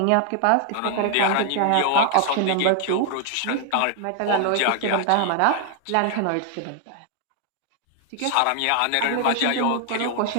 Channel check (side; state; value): both; different; correlation 0.00